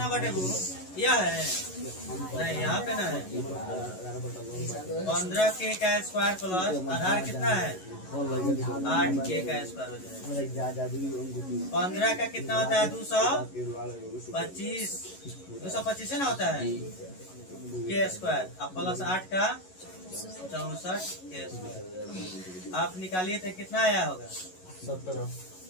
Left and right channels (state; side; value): late; right; 11 ms